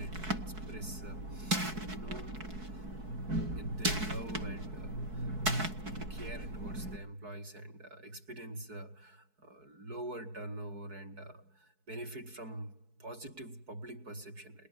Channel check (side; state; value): left; late; 4.6 ms